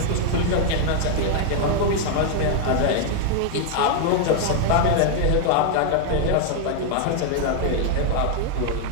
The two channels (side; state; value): both; different; correlation 0.00